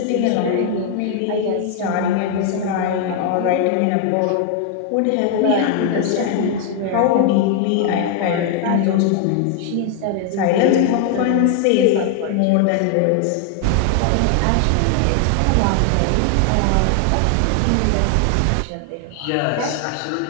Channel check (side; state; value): both; different; correlation 0.00